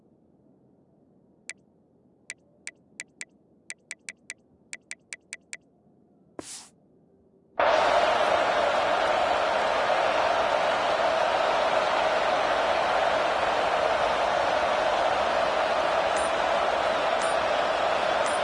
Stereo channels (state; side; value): identical; both; correlation 1.00